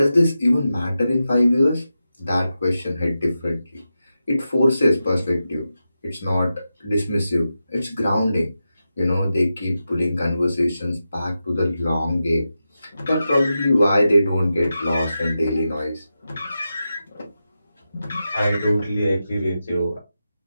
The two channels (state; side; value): inverted; both; correlation -0.90